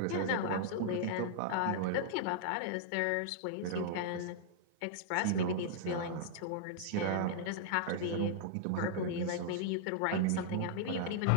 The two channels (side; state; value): both; different; correlation -0.01